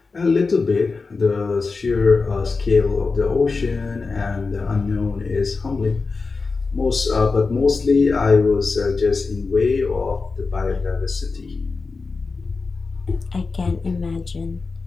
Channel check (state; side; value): quieter; right; 4.2 dB